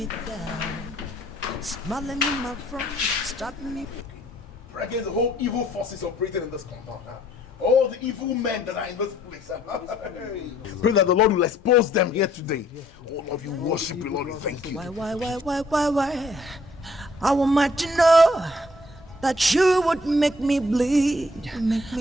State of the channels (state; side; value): normal; both; correlation 0.63